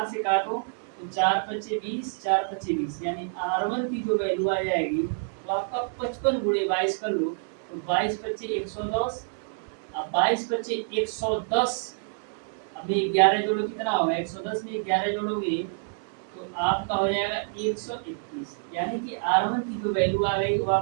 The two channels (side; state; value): left; silent; digital silence